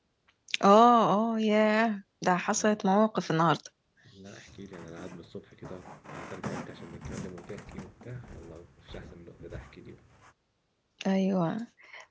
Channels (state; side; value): identical; both; correlation 1.00